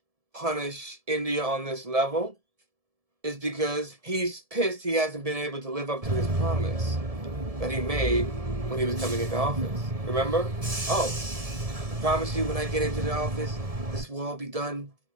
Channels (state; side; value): late; left; 1.7 ms